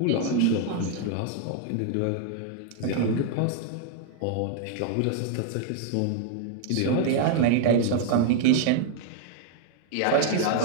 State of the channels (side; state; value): both; different; correlation 0.00